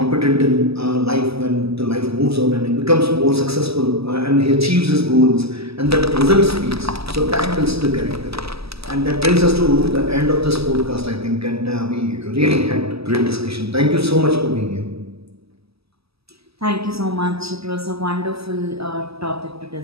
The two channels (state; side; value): late; left; 0.78 ms